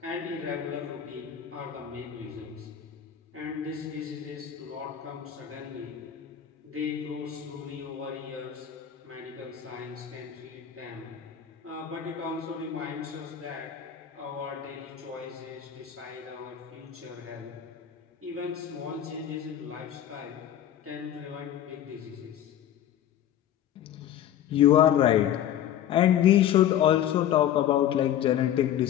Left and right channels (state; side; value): quieter; right; 10.6 dB